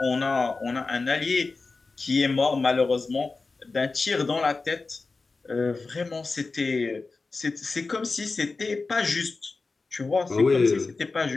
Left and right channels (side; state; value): right; quieter; 3.9 dB